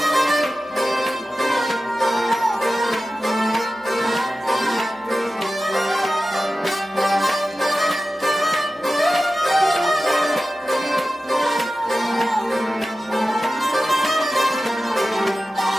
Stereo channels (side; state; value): both; normal; correlation 0.94